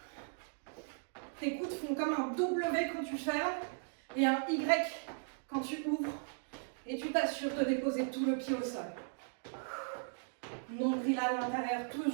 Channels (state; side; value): silent; left; digital silence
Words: Tes coudes font comme un W quand tu fermes et un Y quand tu ouvres. Et tu t'assures de déposer tout le pied au sol. Nombril à l'intérieur,